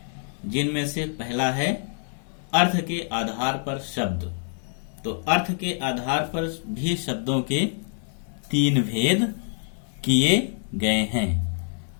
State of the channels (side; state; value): right; silent; digital silence